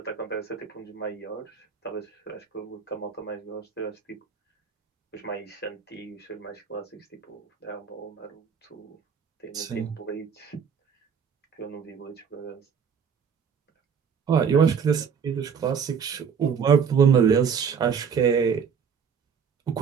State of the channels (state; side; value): quieter; left; 6.8 dB